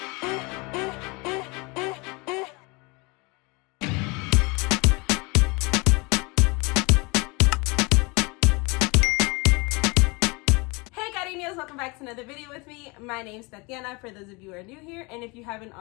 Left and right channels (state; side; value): quieter; right; 27.5 dB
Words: Welcome back to another video with me. My name's Tatiana, for those of you who are new here, and if you haven't